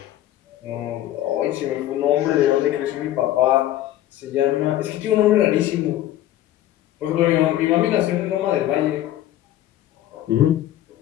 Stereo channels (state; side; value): quieter; right; 13.4 dB